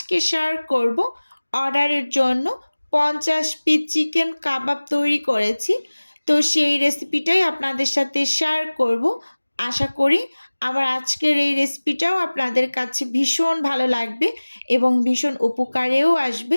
শেয়ার করব অর্ডারের জন্য 50 পিস চিকেন কাবাব তৈরি করেছি। তো সেই রেসিপিটাই আপনাদের সাথে শেয়ার করব। আশা করি আমার আজকের এই রেসিপিটাও আপনাদের কাছে ভীষণ ভালো লাগবে এবং ভীষণ উপকারেও আসবে।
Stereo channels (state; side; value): inverted; both; correlation -1.00